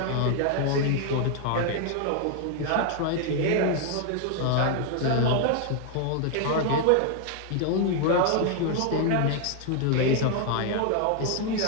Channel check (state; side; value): different; both; correlation 0.00